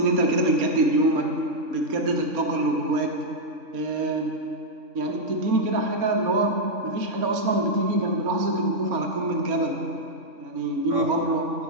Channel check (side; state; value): left; late; 3.5 ms